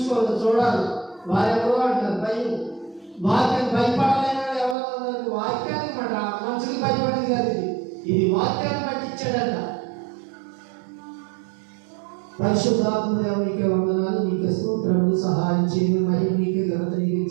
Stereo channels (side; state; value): left; drops out; at 4.8 s